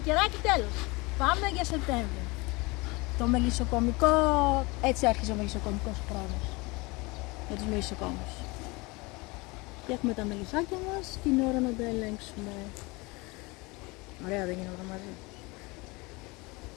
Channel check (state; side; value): quieter; right; 25.1 dB